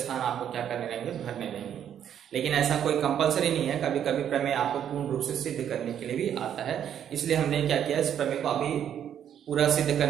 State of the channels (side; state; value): left; quieter; 9.5 dB